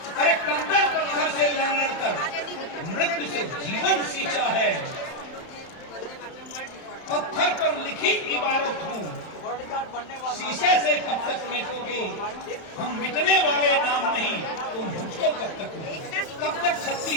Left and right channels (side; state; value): right; late; 31 ms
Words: अरे कंकड़ पत्थर से लड़कर मृत्यु से जीवन सींचा है। पत्थर पर लिखी इबारत हूँ, शीशे से कब तक फेंकोगे, हम मिटने वाले नाम नहीं, तुम मुझको कब तक